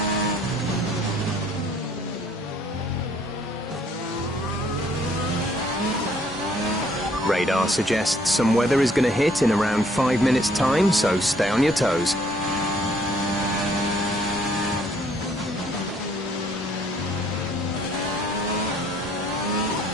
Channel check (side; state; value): both; normal; correlation 0.63